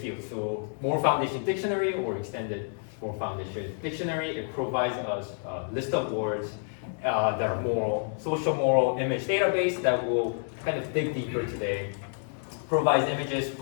So Moral Foundation Dictionary or Extended Moral Foundation Dictionary, it provides us a list of words that are moral, socio-moral image database that will kind of dig deeper today, provides images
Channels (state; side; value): silent; right; 59 dB below the other